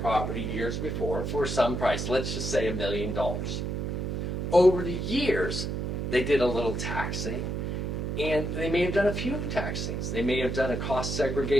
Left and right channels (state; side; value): noise; right; hum, 2 dB below the sound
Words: property years before for some price. Let's just say $1 million. Over the years, they did a little taxing, and they may have done a few tax things. They may have done a cost